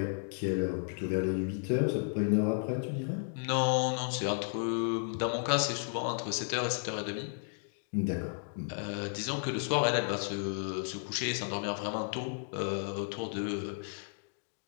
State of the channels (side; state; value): right; silent; digital silence